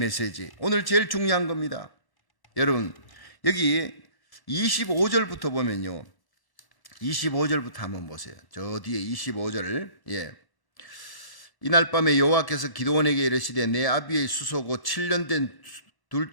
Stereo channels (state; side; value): late; right; 1.1 ms